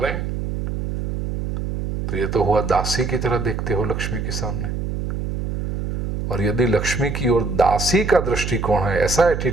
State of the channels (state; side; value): noise; right; hum, 2 dB below the sound